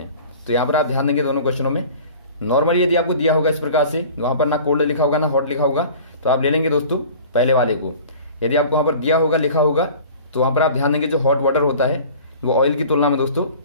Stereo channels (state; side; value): inverted; both; correlation -0.43